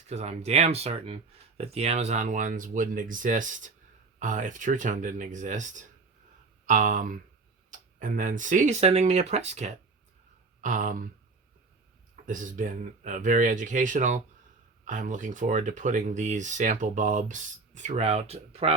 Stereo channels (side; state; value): left; quieter; 4.0 dB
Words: because I'm damn certain that the Amazon ones wouldn't exist if Tru-Tone didn't exist. And then C, sending me a press kit. This has been very educational. I'm looking forward to putting these sample bulbs throughout